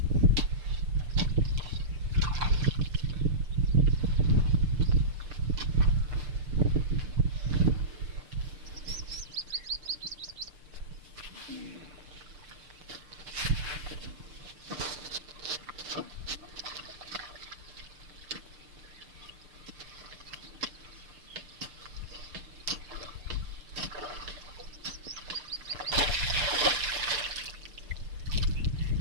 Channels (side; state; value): left; late; 6.6 ms